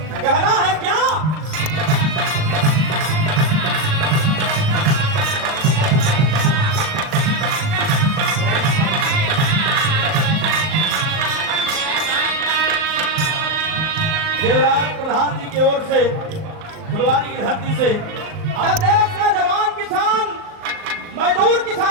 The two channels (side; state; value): left; late; 38 ms